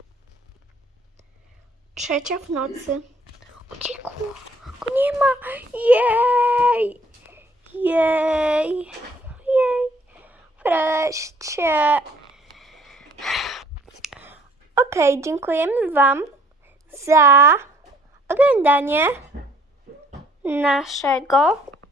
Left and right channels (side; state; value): both; normal; correlation 0.59